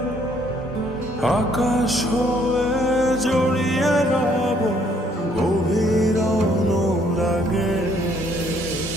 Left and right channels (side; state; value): both; normal; correlation 0.65